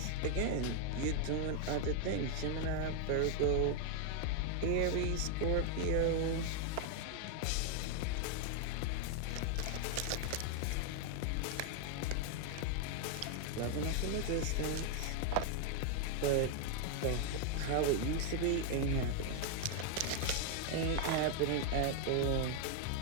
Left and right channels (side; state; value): both; different; correlation 0.00